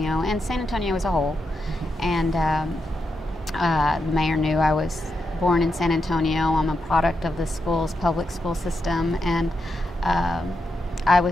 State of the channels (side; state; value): both; normal; correlation 0.85